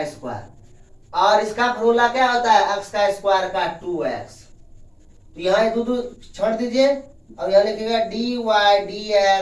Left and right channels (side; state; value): both; identical; correlation 1.00